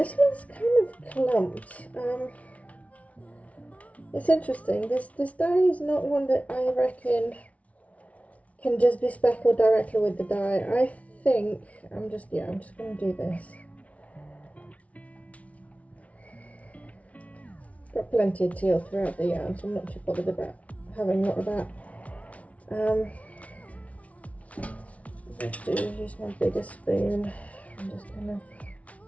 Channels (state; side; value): late; right; 0.066 ms